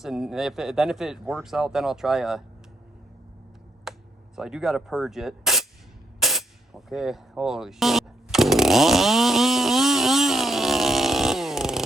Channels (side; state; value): both; normal; correlation 0.75